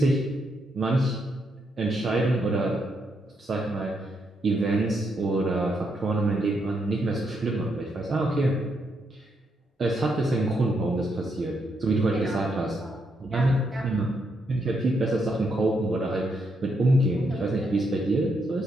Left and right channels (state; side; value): normal; both; correlation 0.78